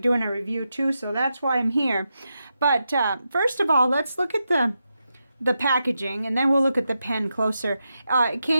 doing a review too, so that's why I'm here. But first of all, let's look at the packaging, and then we'll look at the pen closer. It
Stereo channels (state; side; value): inverted; both; correlation -0.87